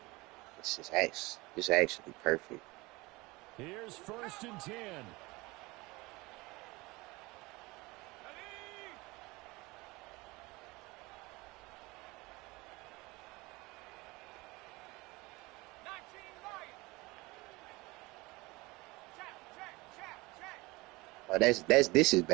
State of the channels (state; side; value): quieter; left; 22.8 dB